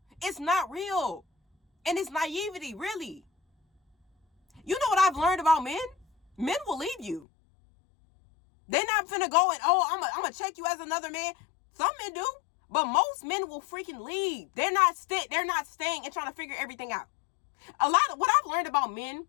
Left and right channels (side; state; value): right; drops out; at 7.2 s